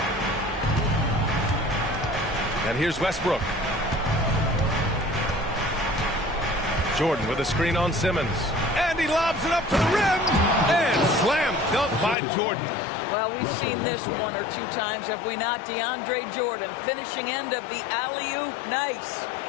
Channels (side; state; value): right; drops out; at 12.2 s